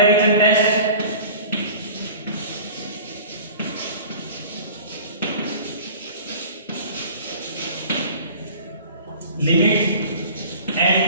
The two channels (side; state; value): both; inverted; correlation -0.42